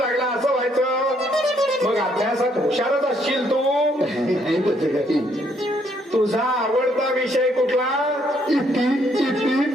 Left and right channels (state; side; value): normal; both; correlation 0.70